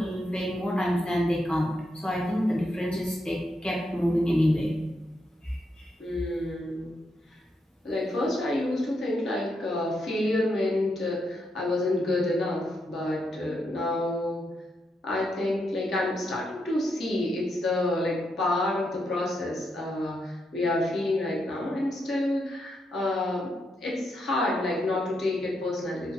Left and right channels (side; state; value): both; normal; correlation 0.81